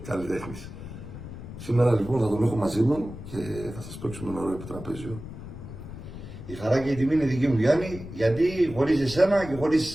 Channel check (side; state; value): left; noise; rumble, 12 dB below the sound